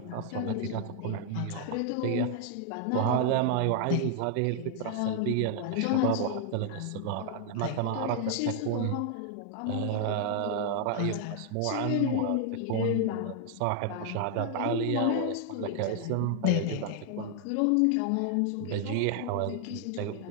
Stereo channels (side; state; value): both; different; correlation 0.00